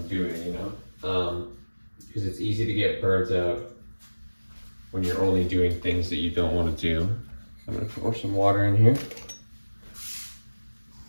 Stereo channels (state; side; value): inverted; both; correlation -1.00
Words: doing, because it's easy to get burnt out when you're only doing things that you don't want to do. I'm gonna pour some water in here.